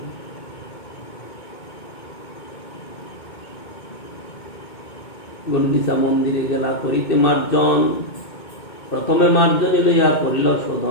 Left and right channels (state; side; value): late; right; 2.2 ms